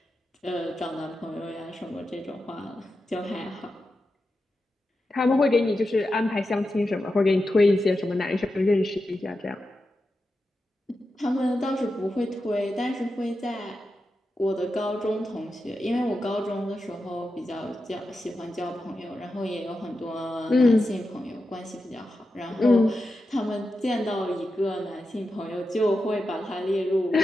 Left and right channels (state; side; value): normal; both; correlation 0.90